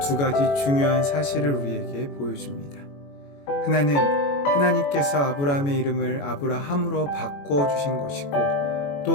두 가지 중요한 사실을 우리에게 보여줍니다. 하나는 하나님께서 아브라함의 이름을 아브라함으로 바꾸어 주신 것이고 또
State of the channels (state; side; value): late; right; 21 ms